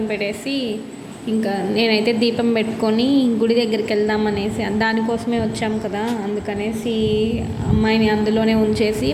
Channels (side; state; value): both; identical; correlation 1.00